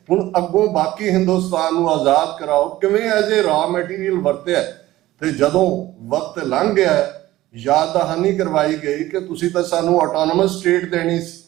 ਹੁਣ ਅੱਗੋਂ ਬਾਕੀ ਹਿੰਦੁਸਤਾਨ ਨੂੰ ਆਜ਼ਾਦ ਕਰਾਓ। ਕਿਵੇਂ ਐਜ਼ ਏ ਰਾ ਮਟੀਰੀਅਲ ਵਰਤਿਆ। ਤੇ ਜਦੋਂ ਵਕਤ ਲੰਘ ਗਿਆ, ਯਾਦ ਦਹਾਨੀ ਕਰਵਾਈ ਗਈ ਕਿ ਤੁਸੀਂ ਤਾਂ ਸਾਨੂੰ ਆਟੋਨੋਮਸ ਸਟੇਟ ਦੇਣੀ ਸੀ।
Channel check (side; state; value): left; quieter; 16.1 dB